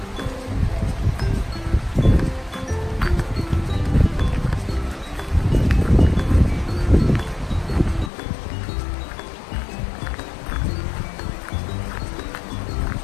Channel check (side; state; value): right; drops out; at 8.1 s